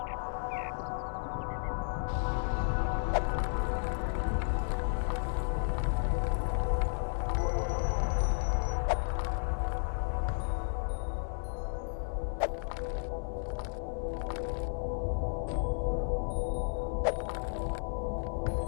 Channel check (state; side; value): silent; right; 56 dB below the other